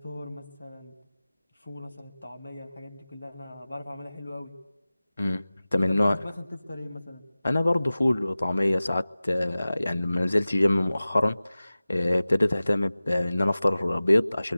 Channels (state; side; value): inverted; both; correlation -0.97